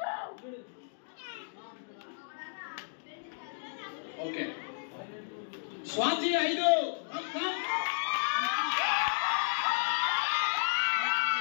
ఓకే. స్వాతి 5.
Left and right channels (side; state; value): right; silent; digital silence